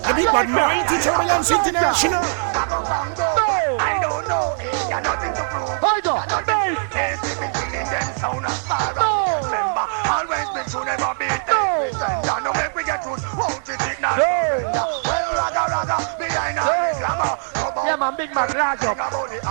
The big bad mighty turbulence international. I don't know. Got nothing to prove. Hold on. They see me killing them sound as far as remember. Always be true, never be every sender. No make we get truth, won't you think now? Well, raga, behind all the glamour. Yeah, man, big man, large up.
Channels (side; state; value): left; silent; 65 dB below the other